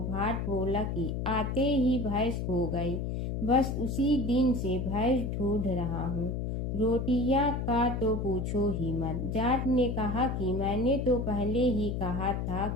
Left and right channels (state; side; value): noise; left; hum, 2 dB below the sound